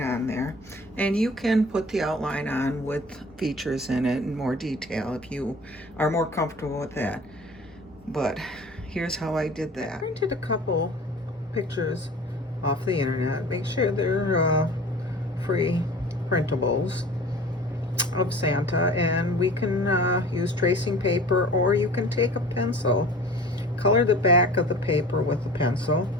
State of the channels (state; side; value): normal; both; correlation 0.43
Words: on there. And you can put the outline on with features in it in more detail if you are more comfortable with that. But here's how I did that. I printed a couple pictures off the internet. Make sure they're free printables of Santa, and we can use tracing paper, or you can take a pencil, color the back of the paper with a pencil,